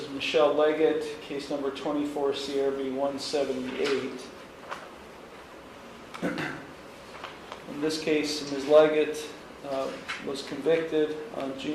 Michelle Leggett, case number 24 CRB 178. In this case, Ms. Leggett was convicted on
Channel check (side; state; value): both; identical; correlation 1.00